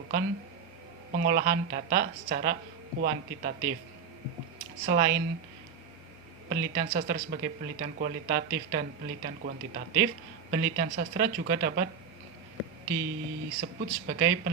pengolahan data secara kuantitatif. Selain penelitian sastra sebagai penelitian kualitatif dan penelitian kuantitatif, penelitian sastra juga dapat disebut sebagai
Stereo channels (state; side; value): quieter; left; 6.6 dB